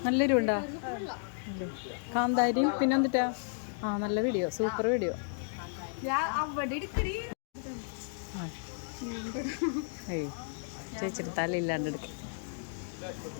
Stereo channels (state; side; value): silent; right; digital silence